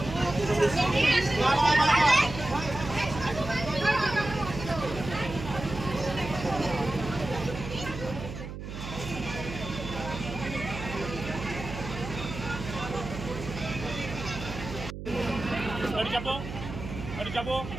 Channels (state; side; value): noise; right; hum, 9 dB below the sound